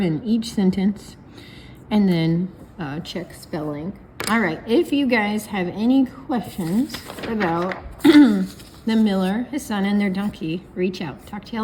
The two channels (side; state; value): both; identical; correlation 1.00